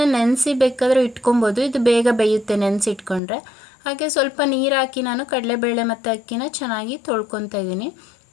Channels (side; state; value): right; drops out; at 3.2 s